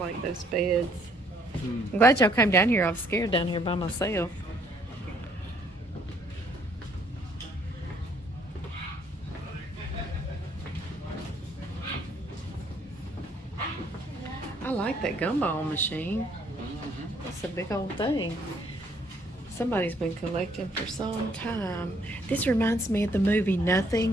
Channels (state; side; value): normal; both; correlation 0.65